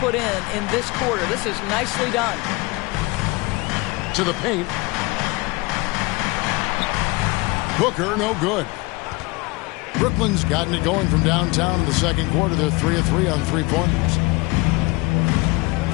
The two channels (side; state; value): right; quieter; 24.0 dB